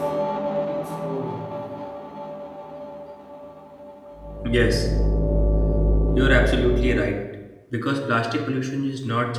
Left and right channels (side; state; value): both; identical; correlation 1.00